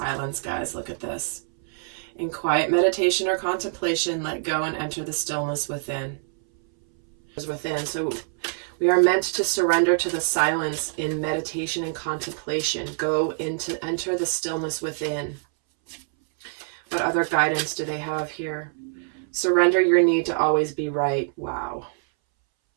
guys. Look at this. In quiet meditation or contemplation, let go and enter the stillness within. within. So we are meant to surrender to the silence in meditation and contemplation. Enter the stillness within. What other guidance do they have here? Surrender your need to always be right. Wow.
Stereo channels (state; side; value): silent; left; 61 dB below the other